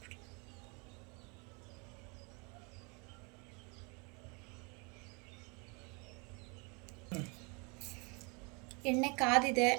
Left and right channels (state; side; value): quieter; left; 31.6 dB